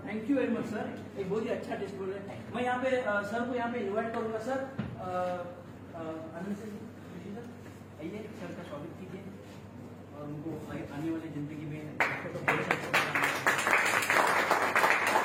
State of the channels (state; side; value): identical; both; correlation 1.00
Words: Thank you very much sir. एक बहुत ही अच्छा टेस्टबुल है. मैं यहाँ पे सर को यहाँ पे इन्वाइट करूंगा. सर आइए, सर का स्वागत कीजिए और उनको आने वाली जिंदगी में